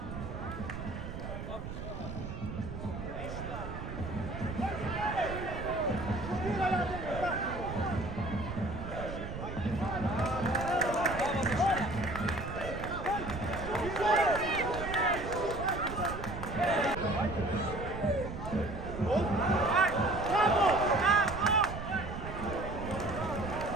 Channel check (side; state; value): right; noise; rumble, 8 dB below the sound